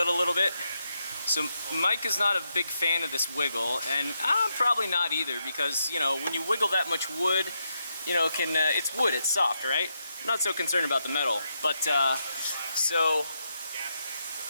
a little bit? So, Mike is not a big fan of this wiggle, and I'm probably not either, because, you know, when you wiggle that much wood, you know, it's wood, it's soft, right? I'm not so concerned about the metal. But, so,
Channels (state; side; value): inverted; both; correlation -0.82